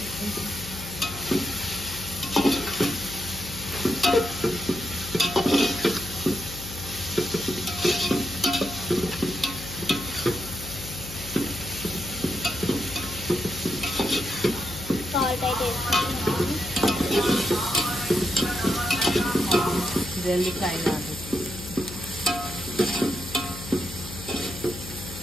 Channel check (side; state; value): left; noise; hum, 11 dB below the sound